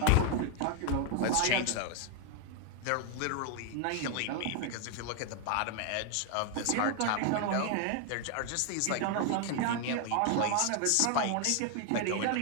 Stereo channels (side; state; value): both; different; correlation 0.00